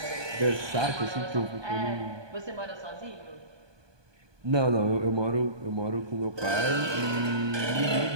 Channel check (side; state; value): left; late; 1.2 ms